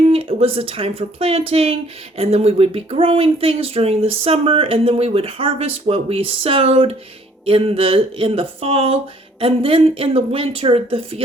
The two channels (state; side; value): normal; both; correlation 0.60